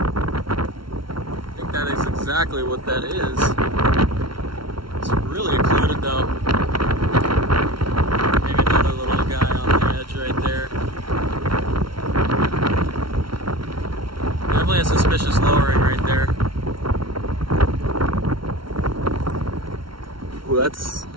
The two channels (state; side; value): late; left; 0.74 ms